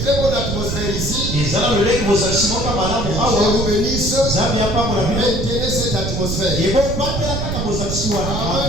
très bonne atmosphère ici. Je vous bénisse. Maintenez cette atmosphère.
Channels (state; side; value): noise; right; rumble, 3 dB below the sound